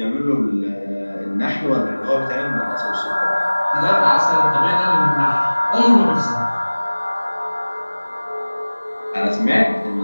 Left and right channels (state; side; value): inverted; both; correlation -1.00